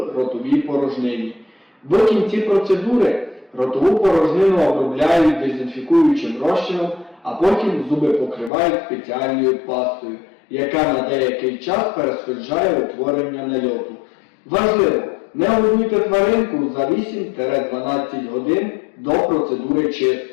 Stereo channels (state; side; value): drops out; right; at 8.5 s